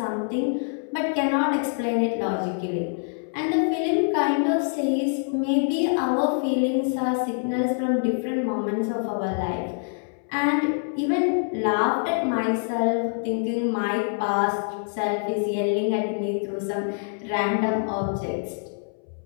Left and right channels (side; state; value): right; silent; 62 dB below the other